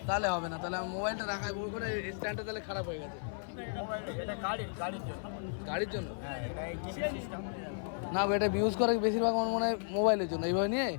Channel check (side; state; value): right; silent; 55 dB below the other